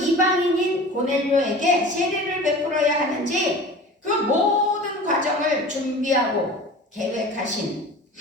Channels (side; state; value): both; normal; correlation 0.38